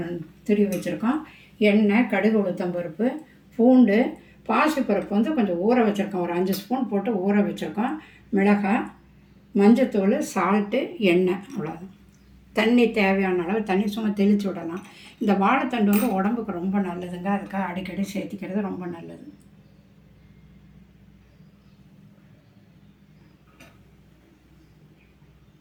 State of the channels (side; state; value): both; identical; correlation 1.00